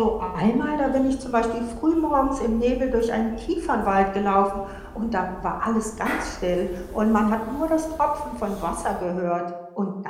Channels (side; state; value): both; identical; correlation 1.00